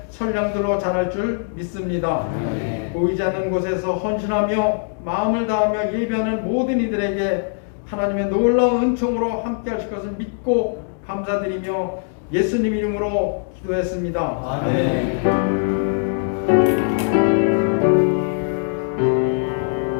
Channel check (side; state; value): right; silent; digital silence